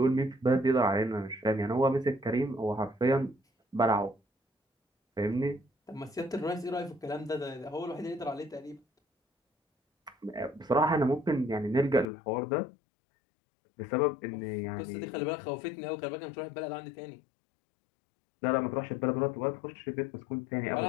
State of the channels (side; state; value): right; drops out; at 12.1 s